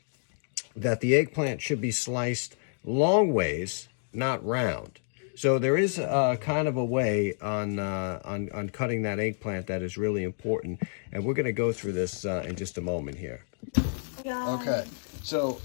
that the eggplant should be sliced long ways, not round. So there is kind of a way on cutting that eggplant that is really important, and we're going to go through this in just a moment here. Okay, so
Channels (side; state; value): right; silent; digital silence